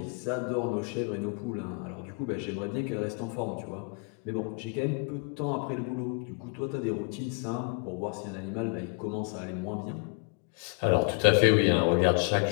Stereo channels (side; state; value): right; quieter; 35.5 dB